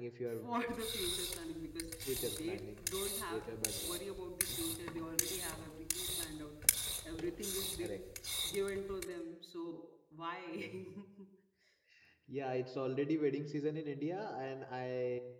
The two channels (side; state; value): both; identical; correlation 1.00